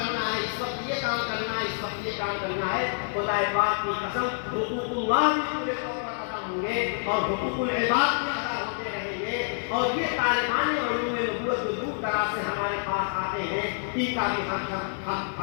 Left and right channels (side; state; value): right; silent; digital silence